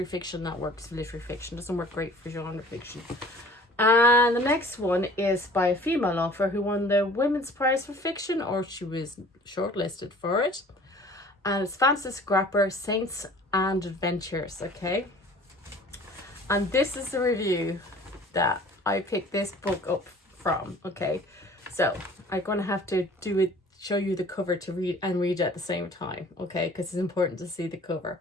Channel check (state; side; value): normal; both; correlation 0.48